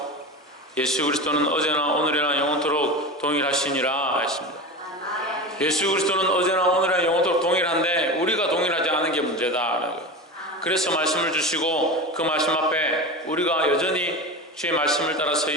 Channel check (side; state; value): both; normal; correlation 0.26